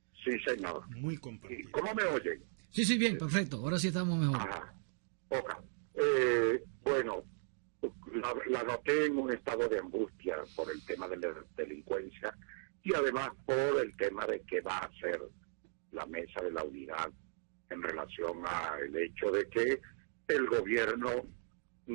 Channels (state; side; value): silent; left; digital silence